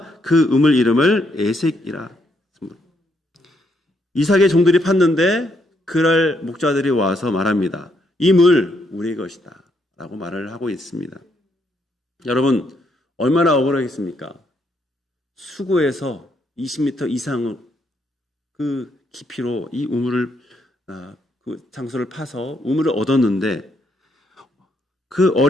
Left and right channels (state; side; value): normal; both; correlation 0.75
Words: 그 우물 이름을 에색이라. 이삭의 종들이 팠는데 그날 목자들이 와서 말합니다. 이 물 우리의 것이다 라고 말을 하고 있습니다. 여러분, 얼마나 억울하겠습니까? 수고해서 20m 이상 그 깊이로 이 우물을 그 장소를 파서 우물을 얻었는데 그